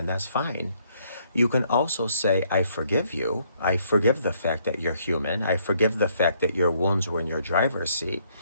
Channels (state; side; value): inverted; both; correlation -0.68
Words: that's fine. You can also say, I forgive you. I forgive the fact that you're human. I forgive the fact that your wounds were in your driver's seat,